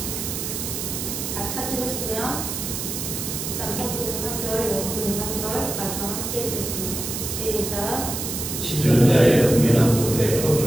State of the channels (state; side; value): noise; right; hiss, 4 dB below the sound